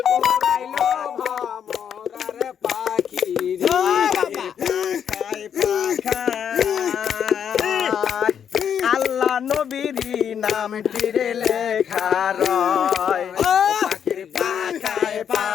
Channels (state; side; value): quieter; right; 8.3 dB